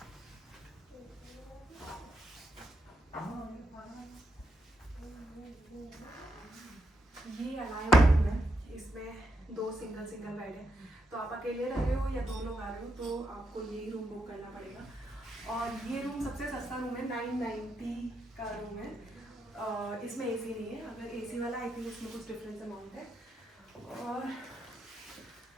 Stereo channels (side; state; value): both; normal; correlation 0.81